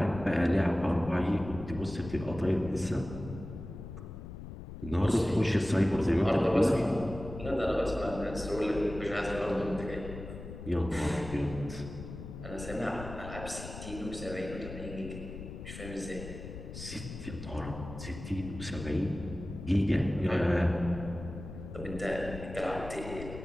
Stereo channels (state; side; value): noise; left; rumble, 11 dB below the sound